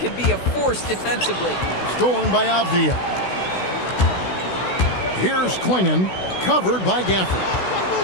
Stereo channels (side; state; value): right; late; 16 ms